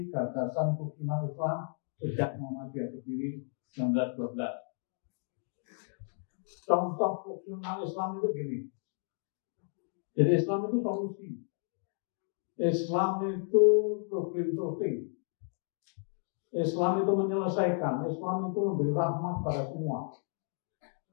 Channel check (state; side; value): silent; right; 56 dB below the other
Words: gagasan kerukunan Islam sejak Muhammadiyah berdiri 1912. Contoh kerukunan Islam itu gini. Jadi Islam itu solusi. Islam itu problem solving. Islam itu menyelesaikan. Islam itu memberi rahmat pada semua.